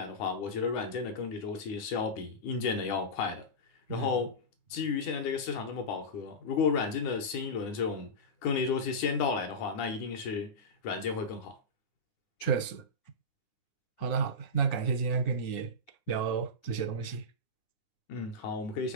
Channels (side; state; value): right; late; 9.8 ms